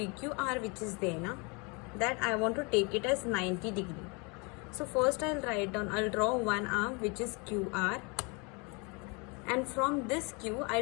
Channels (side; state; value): right; quieter; 31.0 dB